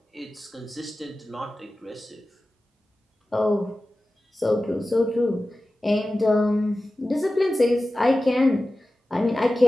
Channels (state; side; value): normal; both; correlation 0.95